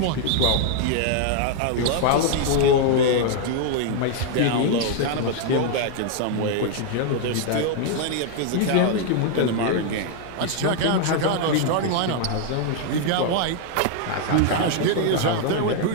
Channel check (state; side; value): different; both; correlation 0.00